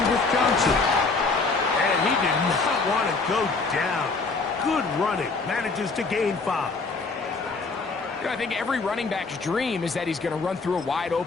with Johnson. And he did not want to go down. Good running. Manages to gain 5. You know, I think every running back's dream is that he's going to run through a wide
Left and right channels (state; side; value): quieter; right; 4.1 dB